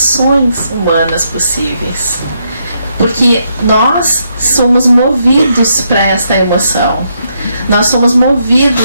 humanas possíveis. Porque nós somos movidos para esta emoção. Nós somos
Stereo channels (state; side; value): inverted; both; correlation -0.77